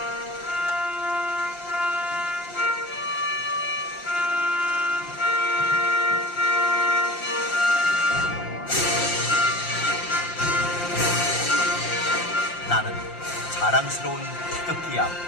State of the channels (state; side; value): late; right; 5.7 ms